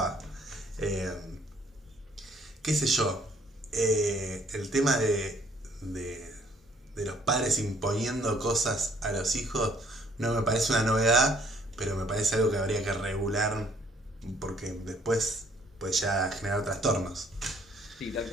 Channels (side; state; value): both; normal; correlation 0.62